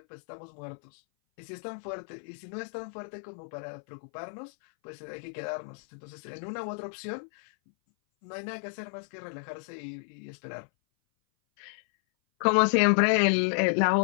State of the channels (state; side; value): silent; right; 57 dB below the other